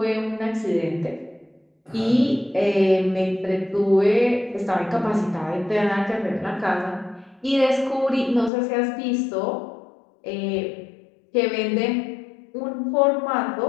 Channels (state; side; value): drops out; right; at 8.5 s